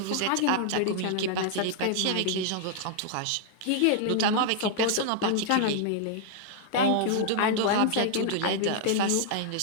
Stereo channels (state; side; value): different; both; correlation -0.01